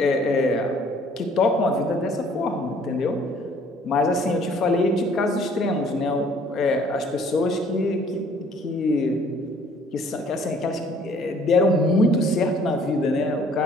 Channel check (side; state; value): both; normal; correlation 0.58